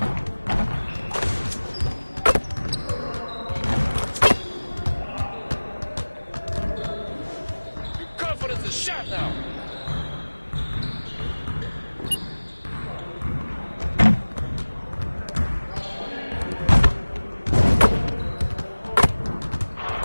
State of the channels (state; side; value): inverted; both; correlation -1.00